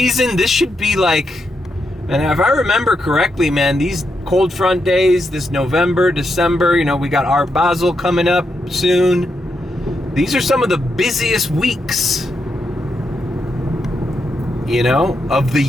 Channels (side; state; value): both; normal; correlation 0.83